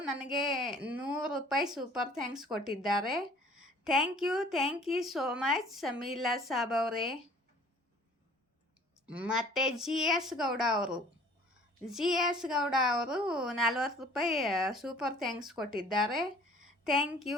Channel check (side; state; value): both; normal; correlation 0.52